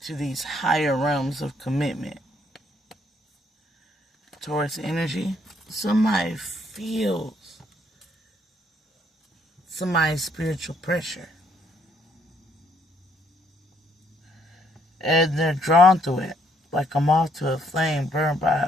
to these higher realms of commitment. Taurus energy, somebody feels somebody's spiritual pressure. And they're drawn to it, like a moth to a flame burned by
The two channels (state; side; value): normal; both; correlation 0.69